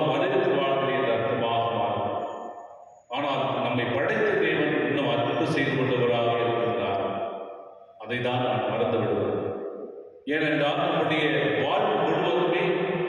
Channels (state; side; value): identical; both; correlation 1.00